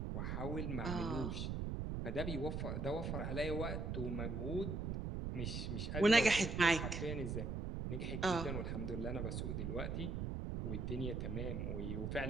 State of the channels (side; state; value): right; noise; rumble, 2 dB below the sound